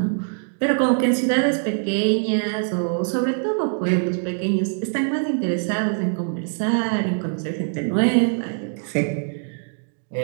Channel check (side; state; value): left; silent; 60 dB below the other